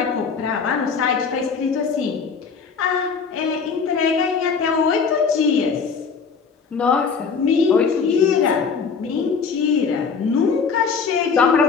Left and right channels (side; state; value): right; quieter; 5.6 dB